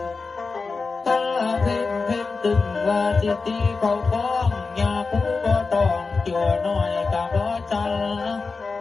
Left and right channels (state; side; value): quieter; right; 4.3 dB